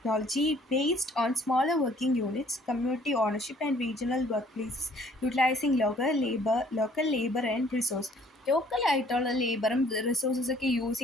based on smaller working units, community ownership and regional workplaces utilizing local labor and resource. ലോക്കലായിട്ടുള്ള ലേബറും റിസോഴ്സസൊക്കെ യൂസ്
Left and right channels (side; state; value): both; normal; correlation 0.59